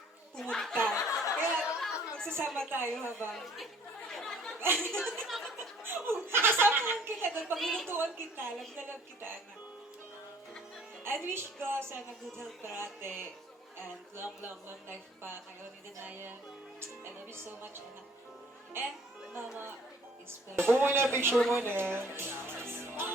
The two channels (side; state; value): both; normal; correlation 0.56